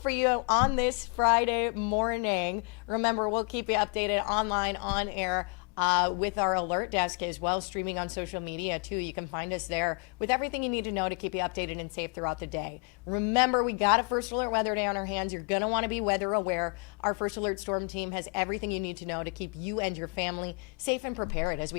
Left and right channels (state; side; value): quieter; right; 38.1 dB